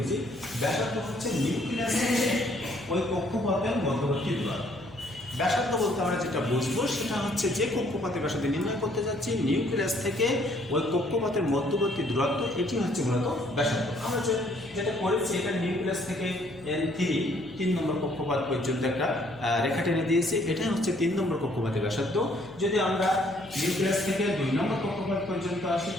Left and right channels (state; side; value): noise; left; hum, 23 dB below the sound